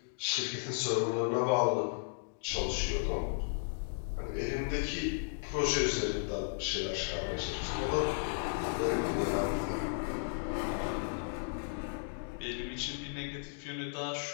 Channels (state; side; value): silent; right; digital silence